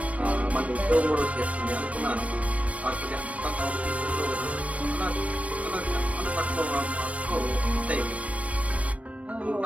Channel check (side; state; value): left; late; 0.065 ms